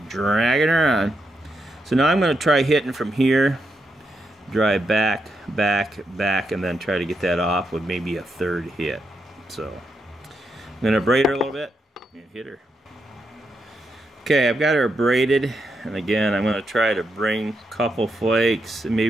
dragging her on. So now I'm going to try hitting from here, drive back, back, back, and then try to get that off with maybe a third hit. So I'm going to braid her a little bit and hit her. Okay, I've got her braided, and again I'm going to try to bring a couple flakes, and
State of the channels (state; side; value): normal; both; correlation 0.83